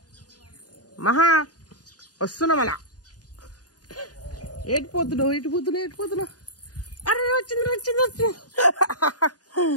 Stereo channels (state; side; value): late; right; 0.68 ms